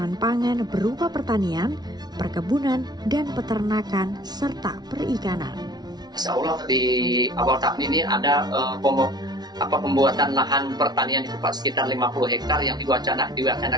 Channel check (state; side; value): late; left; 0.19 ms